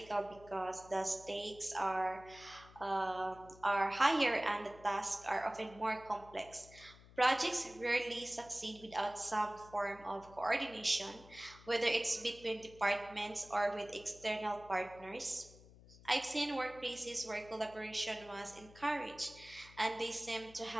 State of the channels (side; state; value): left; noise; hum, 21 dB below the sound